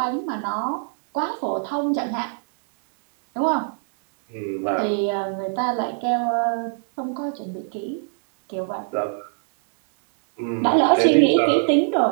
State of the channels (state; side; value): silent; left; 64 dB below the other